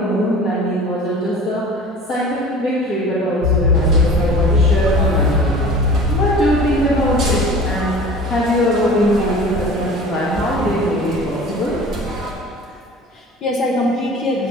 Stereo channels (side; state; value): both; normal; correlation 0.42